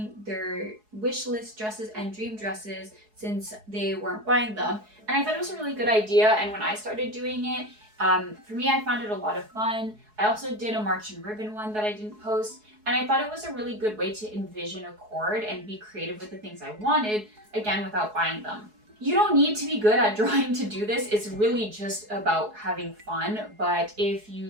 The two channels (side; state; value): left; late; 4.7 ms